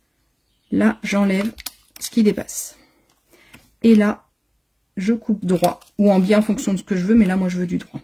Là, j'enlève ce qui dépasse. Et là, je coupe droit ou en biais en fonction de ce que je veux. Mais là, moi, je veux du droit.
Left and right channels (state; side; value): identical; both; correlation 1.00